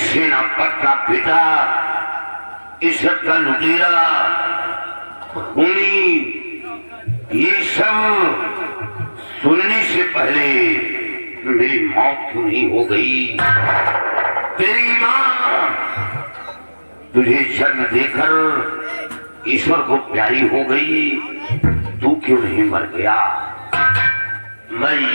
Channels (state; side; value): inverted; both; correlation -1.00